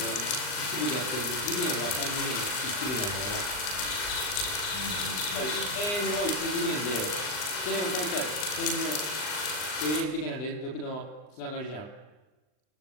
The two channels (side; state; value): right; late; 39 ms